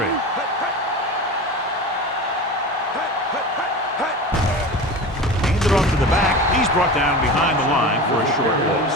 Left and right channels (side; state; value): both; normal; correlation 0.30